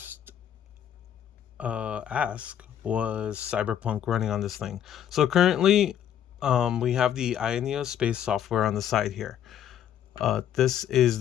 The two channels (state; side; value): quieter; right; 10.0 dB